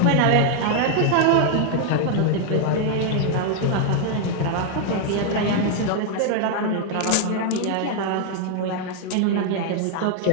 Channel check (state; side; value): different; both; correlation 0.00